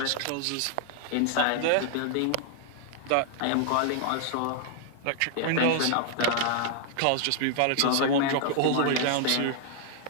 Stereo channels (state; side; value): different; both; correlation 0.00